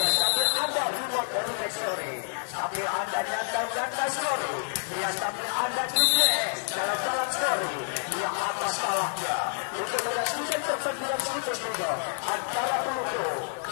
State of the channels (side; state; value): right; silent; 59 dB below the other